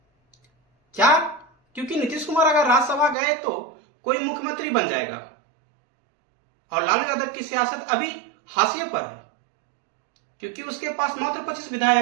क्या? क्योंकि नीतीश कुमार अगर राज्यसभा गए तो कोई मुख्यमंत्री बन जाएगा और लालू यादव की सियासत अभी हाशिए पर है, क्योंकि उसके पास मात्र 25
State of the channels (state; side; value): drops out; left; at 3.2 s